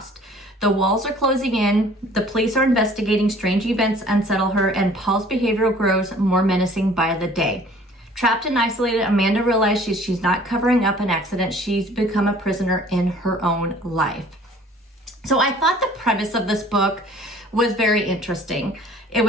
The walls are closing in, the police are investigating, strange events unsettle her, and Paul's behavior grows more menacing by the day. Trapped and isolated, Amanda realizes she's not covering up an accident. She's become a prisoner in her own life. So I thought the premise of this book was very interesting. It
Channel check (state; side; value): normal; both; correlation 0.52